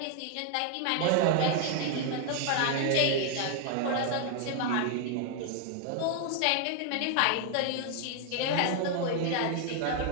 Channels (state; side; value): different; both; correlation 0.00